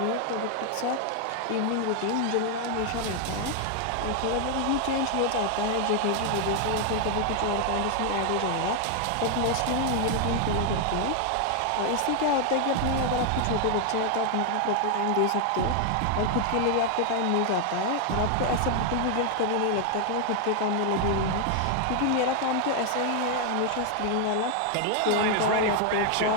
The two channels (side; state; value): both; different; correlation 0.00